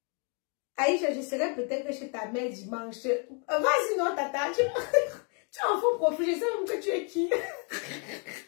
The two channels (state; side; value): quieter; right; 38.0 dB